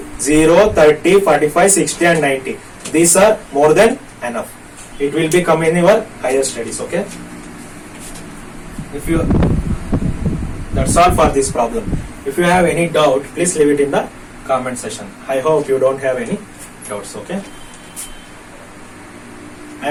0, 30, 45, 60 and 90. These are more than enough. It will be come in your higher studies, okay? That's all for this problem. If you have any doubt, please leave it in the comment section. I hope you don't have any doubts, okay? I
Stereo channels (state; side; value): identical; both; correlation 1.00